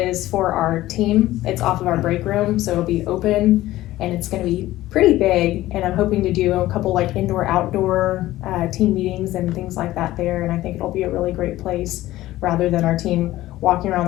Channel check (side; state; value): right; quieter; 15.9 dB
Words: for our team. It's off of our break room, so it'll be open and it's going to be pretty big. And I'm hoping to do a couple like indoor outdoor team meetings and things like that there. And I think it'll be a really great place, rather than our team walking around